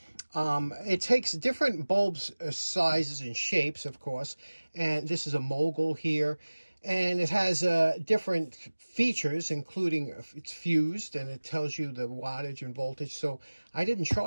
It takes different bulbs, sizes and shapes, of course, and this is a mogul here, and it has different features, including it's fused, and it tells you the wattage and voltage. So I didn't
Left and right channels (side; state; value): both; inverted; correlation -1.00